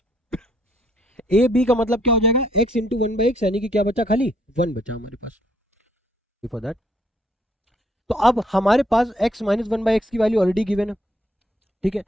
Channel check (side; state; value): both; normal; correlation 0.68